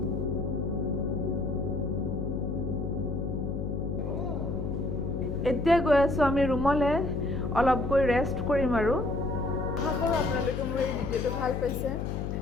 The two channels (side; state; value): left; noise; hum, 3 dB below the sound